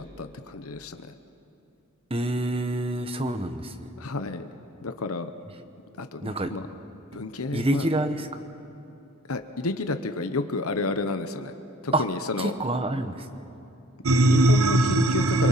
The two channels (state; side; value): normal; both; correlation 0.54